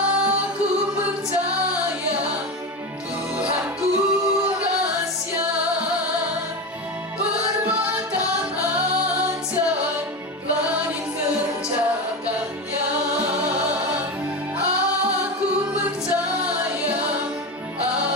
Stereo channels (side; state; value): both; normal; correlation 0.21